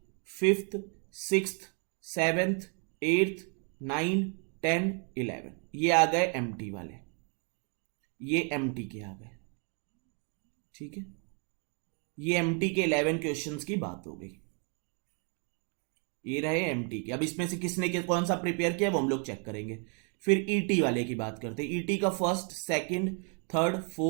fifth, sixth, seventh, eighth, 9, 10, 11 ये आ गए एमटी वाले, ये एमटी के आ गए। ठीक है, ये एमटी के 11 क्वेश्चंस की बात हो गई। ये रहे एमटी के। अब इसमें से किसने कौन सा प्रिपेयर किया वो हम लोग चेक करेंगे। फिर ईटी वाले की बात करते हैं। ईटी का first, second, third,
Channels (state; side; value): quieter; left; 39.4 dB